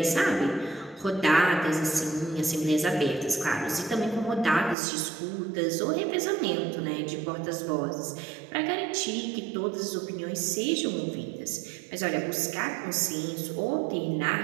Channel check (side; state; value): left; drops out; at 4.8 s